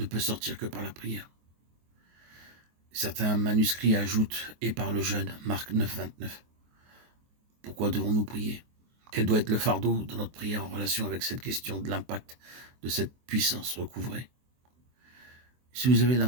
peut sortir que par la prière. Certains manuscrits ajoutent, et par le jeûne, Marc 9, 29. Pourquoi devons-nous prier? Quel doit être le fardeau de notre prière en relation avec cette question de l'impact de cette puissance recouvrée? Si vous avez la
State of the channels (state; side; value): late; left; 24 ms